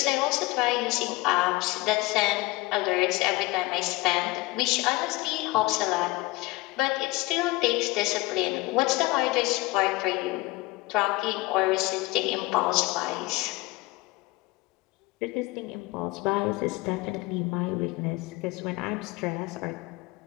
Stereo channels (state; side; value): quieter; right; 21.3 dB